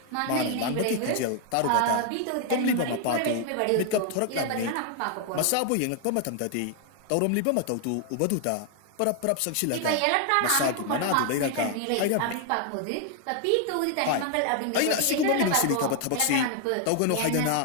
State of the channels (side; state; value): both; different; correlation 0.00